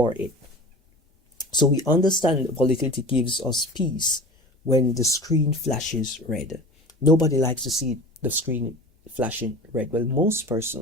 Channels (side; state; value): both; normal; correlation 0.36